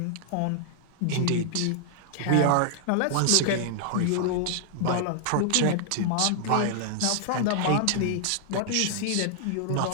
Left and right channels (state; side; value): different; both; correlation -0.01